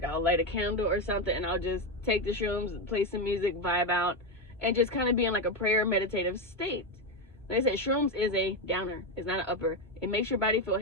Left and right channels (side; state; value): both; normal; correlation 0.10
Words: I'll light a candle or something and I'll just take the shrooms, play some music, vibe out, and just kind of be in like a prayer meditative state. Like I said, shrooms is a downer. It's not an upper. It makes your body feel